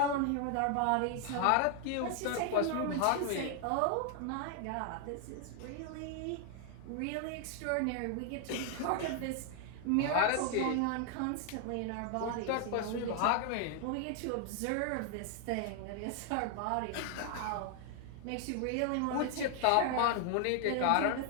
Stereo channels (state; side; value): different; both; correlation 0.00